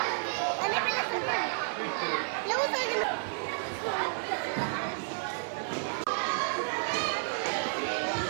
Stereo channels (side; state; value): left; silent; 57 dB below the other